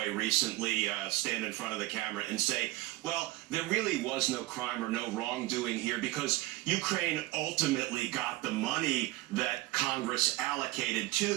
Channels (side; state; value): left; quieter; 19.0 dB